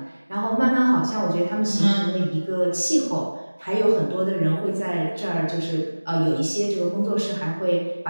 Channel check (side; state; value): both; inverted; correlation -1.00